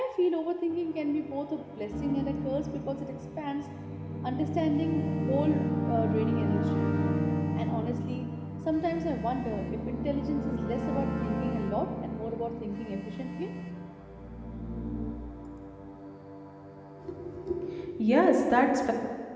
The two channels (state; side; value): identical; both; correlation 1.00